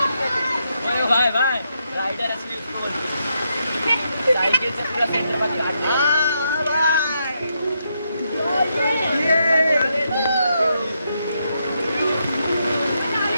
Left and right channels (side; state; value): both; inverted; correlation -0.81